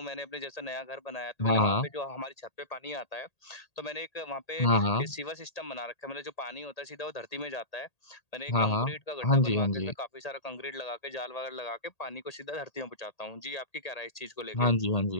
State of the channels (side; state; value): right; late; 1.8 ms